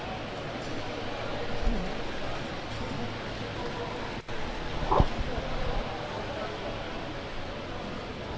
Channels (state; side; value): identical; both; correlation 1.00